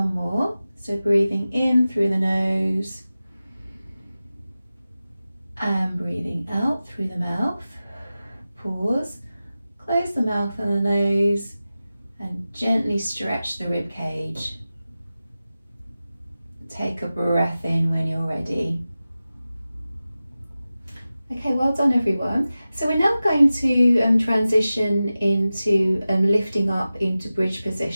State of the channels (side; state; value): both; inverted; correlation -0.95